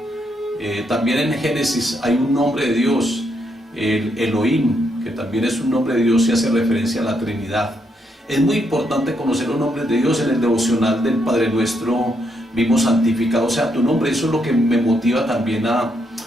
También en Génesis hay un nombre de Dios, el Elohim, que también es un nombre de Dios y hace referencia a la Trinidad. Es muy importante conocer los nombres de Dios. En el devocional del Padre Nuestro vimos santificado sea tu nombre. Eso es lo que me motiva también a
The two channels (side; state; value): both; normal; correlation 0.77